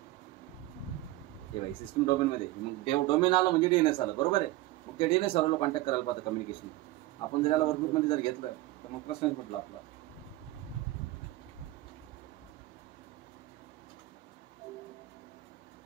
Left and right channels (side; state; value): left; quieter; 17.4 dB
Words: हे बघा सिस्टम डोमेनमध्ये, मग डोमेन आलं म्हणजे डीएनएस आलं बरोबर आहे. मग ते डीएनएस सर्व्हरला कॉन्टॅक्ट करायला पाहतं कम्युनिकेशन. आपण जर याला वर्कग्रुपमध्ये जर घेतलं तर मग प्रश्नच म्हटलं आपला.